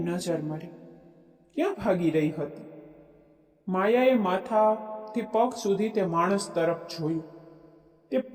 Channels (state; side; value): identical; both; correlation 1.00